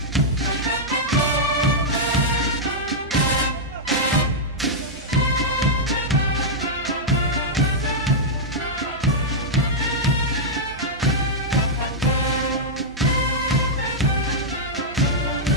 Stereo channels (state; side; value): normal; both; correlation -0.08